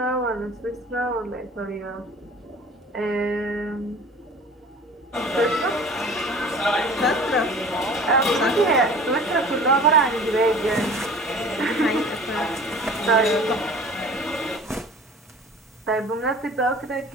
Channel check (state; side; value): normal; both; correlation 0.43